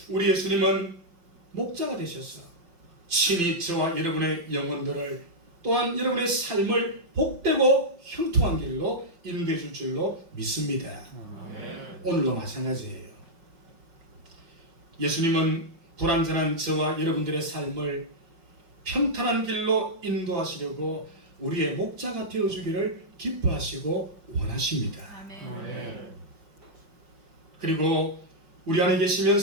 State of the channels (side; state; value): left; late; 5.9 ms